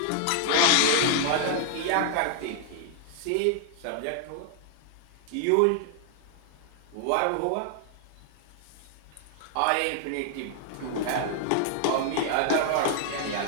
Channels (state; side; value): different; both; correlation 0.00